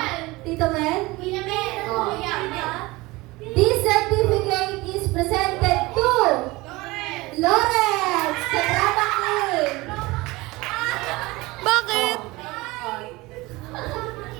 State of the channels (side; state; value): left; quieter; 21.6 dB